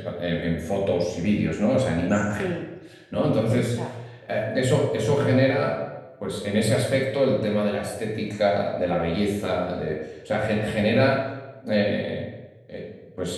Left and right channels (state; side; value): identical; both; correlation 1.00